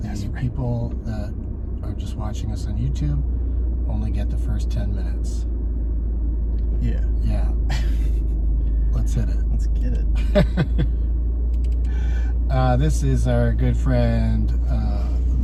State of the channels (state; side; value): identical; both; correlation 1.00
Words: The people that are just watching us on YouTube only get the first 10 minutes. Yeah. Yeah. Let's hit it. Let's get it. This is our good friend,